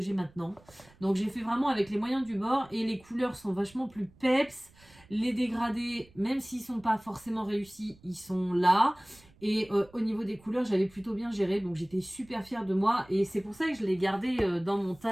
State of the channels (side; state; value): right; noise; rumble, 27 dB below the sound